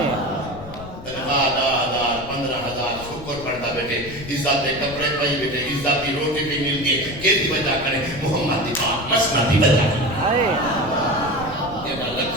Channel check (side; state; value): left; noise; rumble, 13 dB below the sound